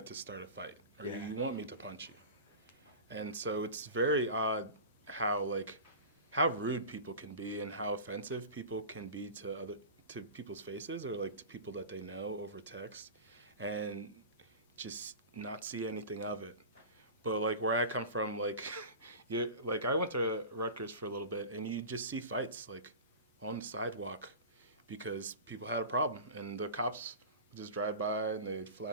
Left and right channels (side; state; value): both; inverted; correlation -0.33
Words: to start a fight, or you want me to punch you. And so it's very odd how rude people can be and how offensive people can be to people's faces, or like to people that they know over text, and just not see anything of it. But like where I come from, like I went to Rutgers for a little bit, and you just see fights like on the sidewalk because people had a problem, and the cops would just drive by and they'd